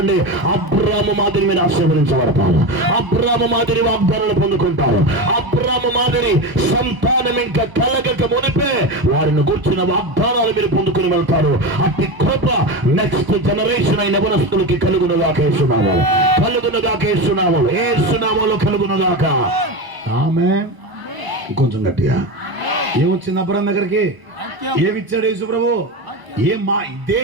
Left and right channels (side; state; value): left; late; 1.0 ms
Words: అబ్రాము మాదిరి మీరు ఆశీర్వదించబడతారు. అబ్రాము మాదిరి వాగ్దానాలు పొందుకుంటారు. అబ్రాము మాదిరి సంతానం ఇంకా కలగక మునిపే వారిని గుర్చిన వాగ్దానాలు మీరు పొందుకుని వెళ్తారు. అట్టి కృప నెక్స్ట్ జనరేషన్ అయిన యవనస్తులకి కలుగునుగాక. యేసునామములో కలుగునుగాక. ఆమేన్. కొంచెం గట్టిగా. ఏమొచ్చింది అబ్రాము దగ్గరికి? ఏమిచ్చాడు యేసు ప్రభు?